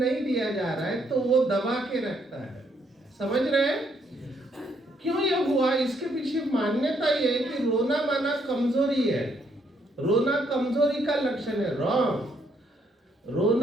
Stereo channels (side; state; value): both; normal; correlation 0.72